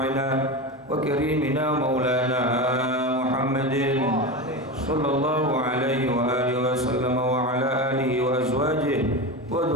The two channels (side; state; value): both; normal; correlation 0.22